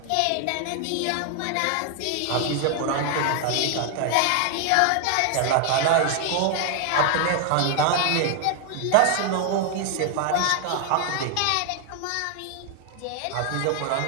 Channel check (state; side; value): different; both; correlation 0.00